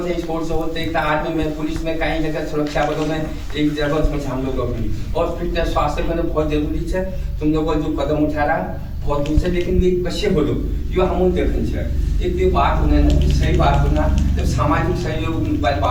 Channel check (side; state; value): both; identical; correlation 1.00